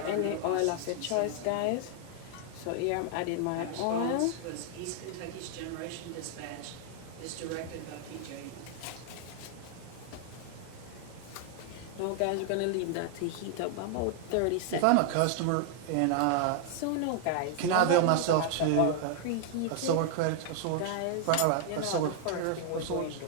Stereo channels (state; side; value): different; both; correlation 0.00